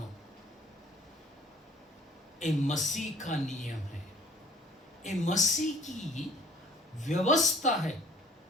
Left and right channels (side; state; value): both; normal; correlation 0.54